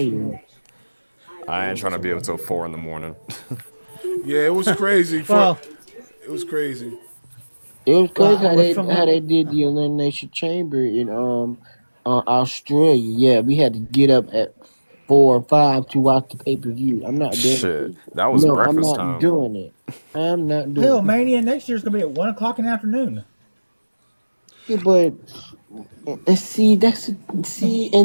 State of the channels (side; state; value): both; inverted; correlation -1.00